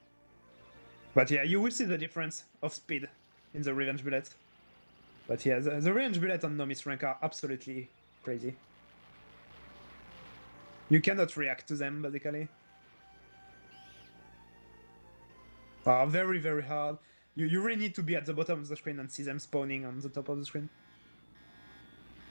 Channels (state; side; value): inverted; both; correlation -1.00